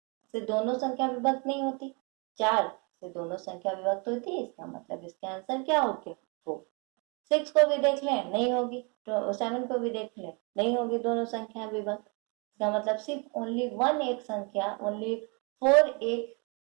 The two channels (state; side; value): quieter; left; 33.0 dB